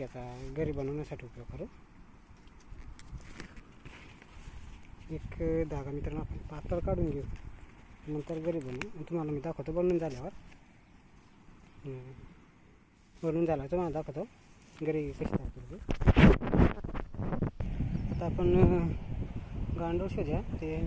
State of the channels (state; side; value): identical; both; correlation 1.00